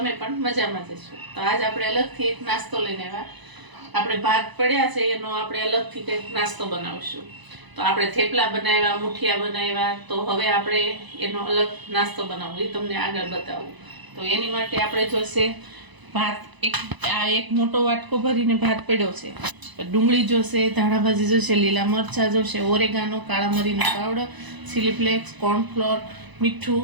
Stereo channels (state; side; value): late; left; 1.0 ms